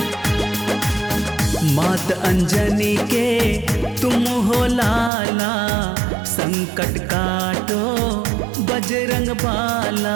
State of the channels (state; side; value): drops out; left; at 5.1 s